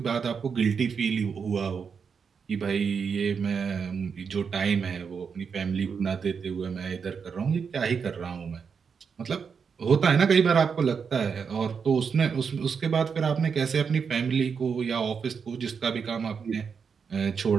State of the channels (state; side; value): quieter; left; 6.1 dB